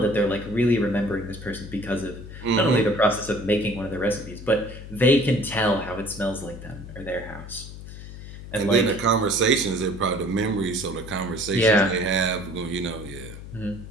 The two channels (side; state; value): left; noise; hum, 13 dB below the sound